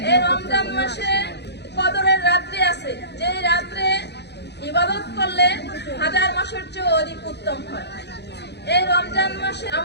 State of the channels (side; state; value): right; late; 0.49 ms